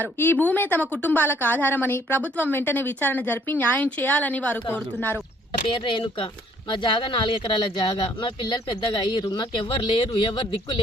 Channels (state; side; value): normal; both; correlation 0.62